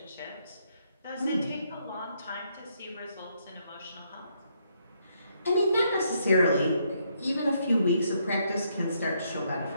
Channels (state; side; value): inverted; both; correlation -0.74